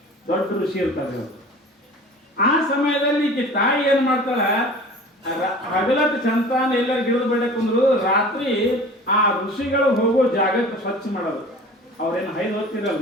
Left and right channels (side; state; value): both; normal; correlation 0.42